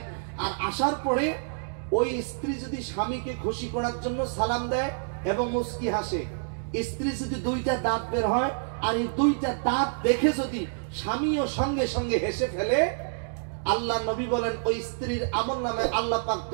আর আসার পরে ওই স্ত্রী যদি স্বামীকে খুশি করার জন্য সালাম দেয় এবং মুস্কি হাসে, স্ত্রী যদি 2টা দাঁত বের হয়, আর এই 2টা দাঁত দেখে যদি স্বামীও সঙ্গে সঙ্গে হেসে ফেলে, আল্লাহ নবী বলেন ওই স্ত্রীর আমল নামে আল্লাহ পাক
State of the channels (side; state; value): left; silent; digital silence